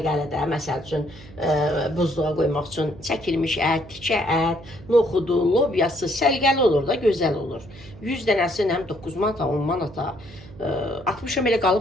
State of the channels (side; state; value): right; noise; hum, 20 dB below the sound